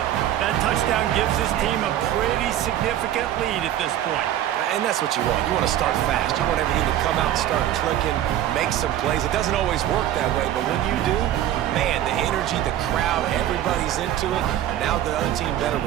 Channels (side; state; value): left; quieter; 12.0 dB